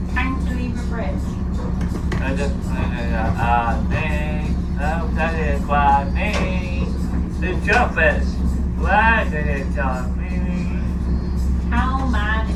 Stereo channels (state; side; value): identical; both; correlation 1.00